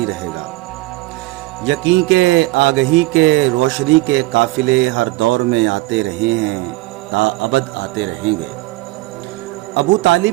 رہے گا۔ یقین کے آگہی کے روشنی کے قافلے ہر دور میں آتے رہے ہیں، تا ابد آتے رہیں گے۔ ابو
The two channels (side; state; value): left; quieter; 19.8 dB